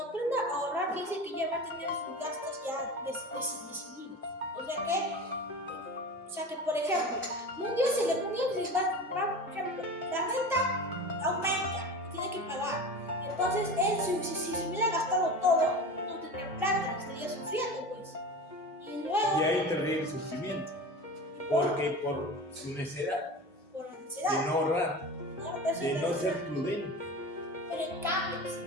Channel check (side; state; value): both; normal; correlation 0.31